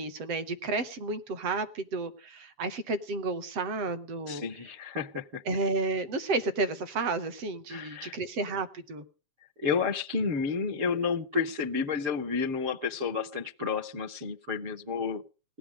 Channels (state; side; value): late; left; 7.5 ms